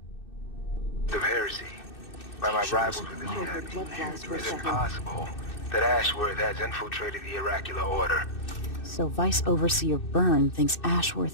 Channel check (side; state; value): right; late; 2.6 ms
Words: heresy by my rivals within the Abbey. Is it possible that Ashworth has infiltrated the Oracular Order? So Vice Overseer Byrne thinks